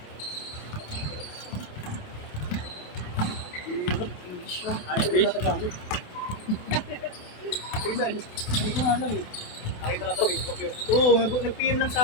English yun. Ayaw ko natagamit. Hindi ko nga lang eh. Nakita lang sa Facebook yung... Oo, nag-PM lang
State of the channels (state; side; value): late; right; 27 ms